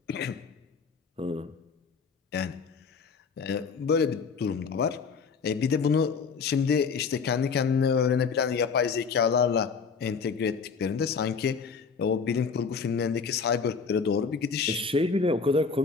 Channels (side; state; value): right; quieter; 5.4 dB